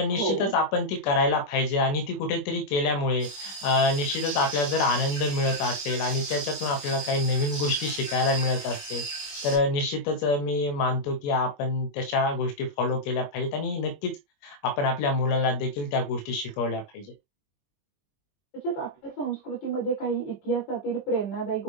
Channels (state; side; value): late; right; 21 ms